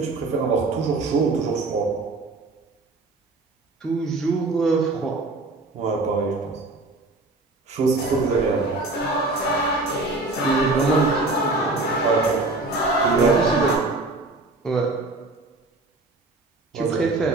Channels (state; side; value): quieter; left; 3.1 dB